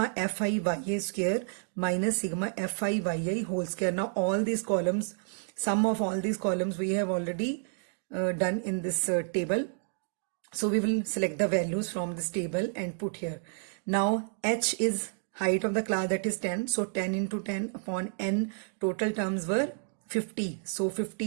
Fi yi square minus sigma Fi yi whole square. Now all these columns, sum of all these columns we have already done in this table. So we will select the values from this table and put here. Now h is height of the class, that is 10. So 10 into 10 upon n, total terms were 50. So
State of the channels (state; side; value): silent; left; digital silence